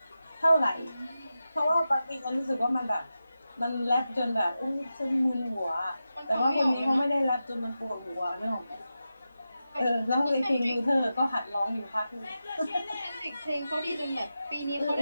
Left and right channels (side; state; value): both; inverted; correlation -0.91